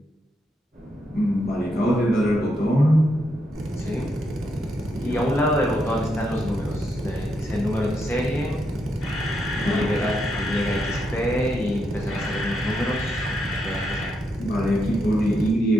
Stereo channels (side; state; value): both; normal; correlation 0.80